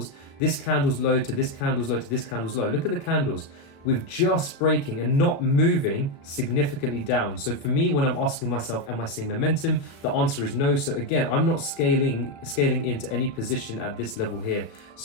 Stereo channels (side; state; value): right; late; 36 ms